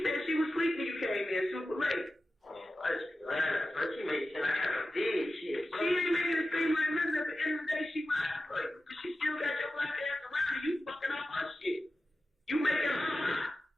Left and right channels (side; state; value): both; normal; correlation 0.93